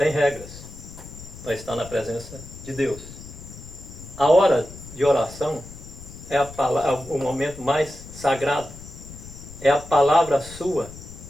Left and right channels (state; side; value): noise; left; rumble, 15 dB below the sound